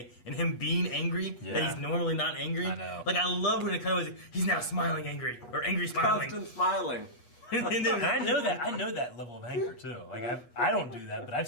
and him being angry that Yeah. he's normally not angry. I know. Like I love when it kind of was like, he's now smiling angry or angry smiling. Constant smiling. And then And I know that. I know that level of anger too. Like I don't do that, but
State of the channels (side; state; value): right; late; 8.3 ms